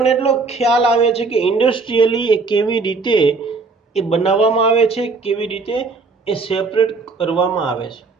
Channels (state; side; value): quieter; left; 4.2 dB